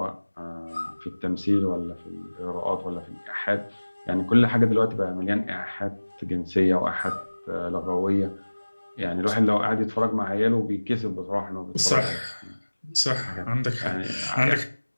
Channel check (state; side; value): inverted; both; correlation -1.00